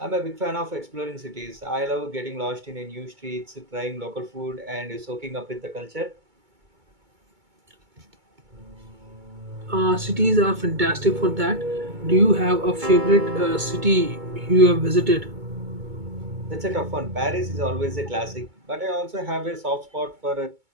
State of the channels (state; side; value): late; left; 2.2 ms